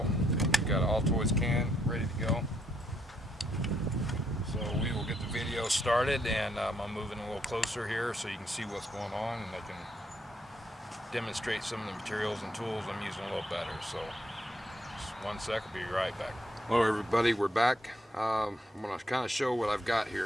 We've got an Altoids can ready to go. So we will get the video started, and I'm moving a little closer here so you can see what's going on, and I can demonstrate some of the materials and tools I'm using a little better. So just 1 sec, I'll be right back. Hello everybody, we're back. I'm going to kind of show what I've got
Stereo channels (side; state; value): both; normal; correlation 0.74